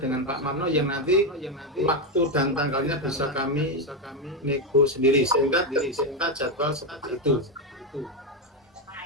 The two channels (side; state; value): both; normal; correlation 0.08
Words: dengan Pak Marno yang nanti waktu dan tanggalnya bisa kami nego sendiri sehingga jadwal seperti itu.